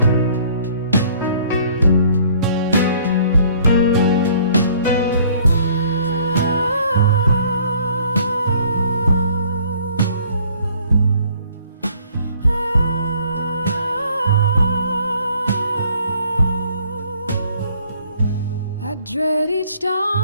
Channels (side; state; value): both; inverted; correlation -0.58